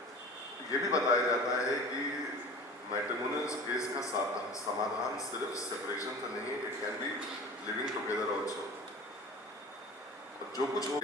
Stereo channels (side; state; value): both; normal; correlation 0.38